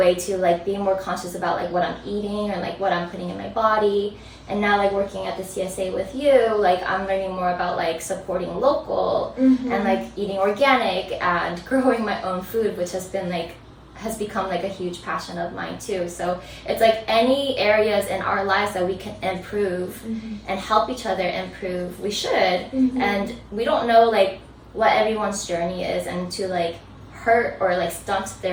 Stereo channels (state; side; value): identical; both; correlation 1.00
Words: to like being more conscious about like what I'm eating or like what I'm putting in my body. And now like working at the CSA with you, like I'm learning more about like supporting local and like eating organic and growing my own food, which has become like a huge passion of mine too. So it's like any areas in our lives that we can improve and help each other improve, we should. And we don't know like what everyone's journey is, and to like hurt or like stunt